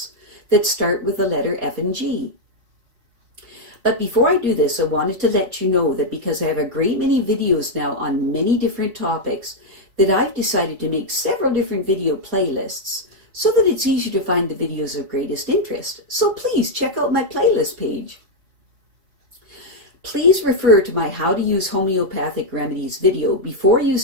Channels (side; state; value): left; late; 4.2 ms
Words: that start with the letter F and G. But before I do this, I wanted to let you know that because I have a great many videos now on many different topics, that I've decided to make several different video playlists so that it's easier to find the videos of greatest interest. So please check out my playlist page. Please refer to my How to Use Homeopathic Remedies video before